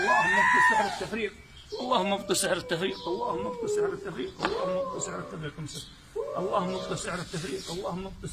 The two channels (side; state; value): both; identical; correlation 1.00